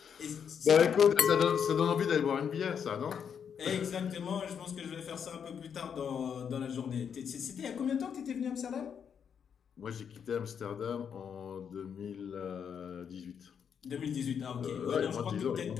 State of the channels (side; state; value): right; quieter; 7.5 dB